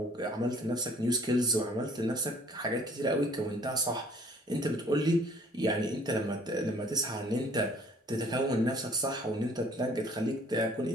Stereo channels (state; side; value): normal; both; correlation 0.57